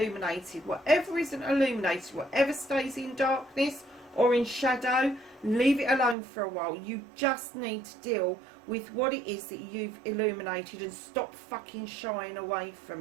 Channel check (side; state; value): left; drops out; at 6.2 s